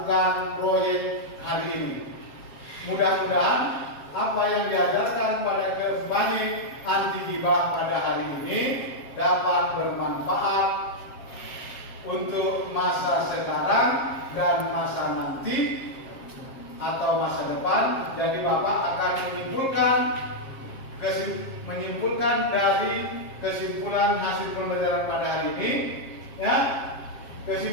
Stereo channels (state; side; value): late; right; 7.5 ms